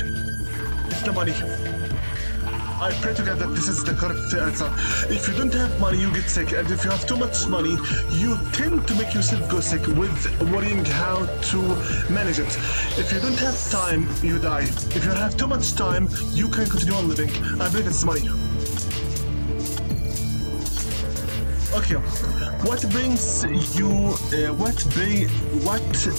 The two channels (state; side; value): inverted; both; correlation -1.00